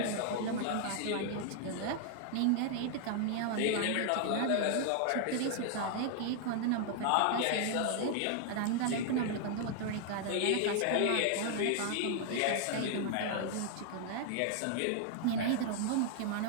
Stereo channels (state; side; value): different; both; correlation 0.00